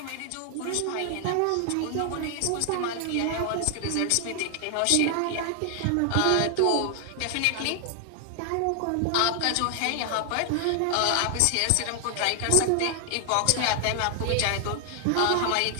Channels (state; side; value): different; both; correlation 0.00